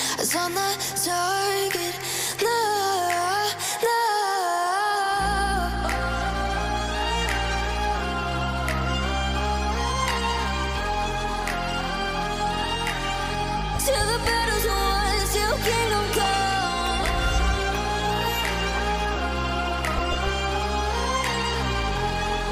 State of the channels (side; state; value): both; identical; correlation 1.00